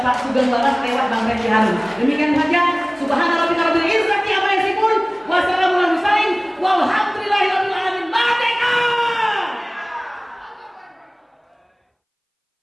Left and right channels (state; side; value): identical; both; correlation 1.00